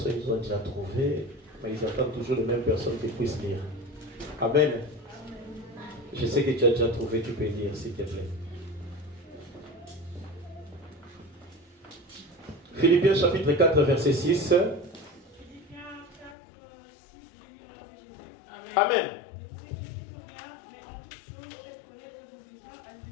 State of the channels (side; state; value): right; drops out; at 16.4 s